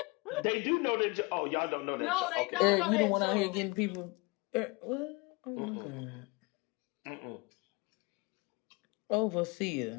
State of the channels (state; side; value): quieter; right; 27.4 dB